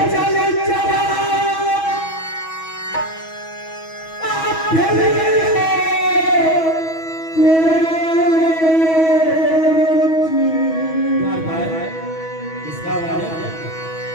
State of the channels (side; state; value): right; late; 6.2 ms